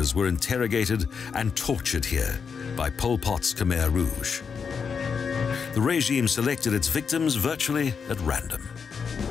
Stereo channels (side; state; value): right; quieter; 6.1 dB